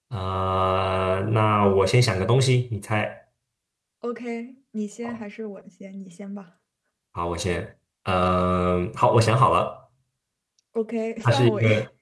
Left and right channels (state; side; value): identical; both; correlation 1.00